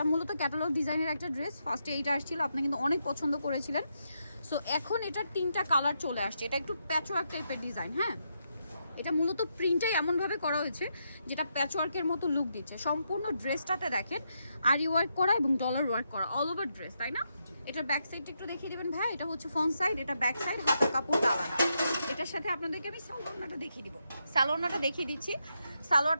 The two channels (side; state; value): both; inverted; correlation -0.82